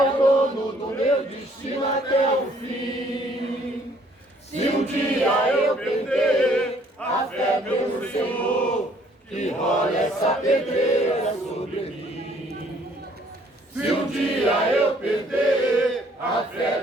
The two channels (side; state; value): both; normal; correlation 0.62